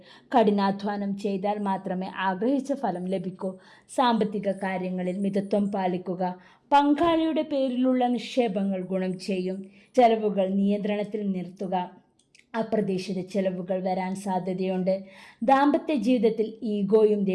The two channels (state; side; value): identical; both; correlation 1.00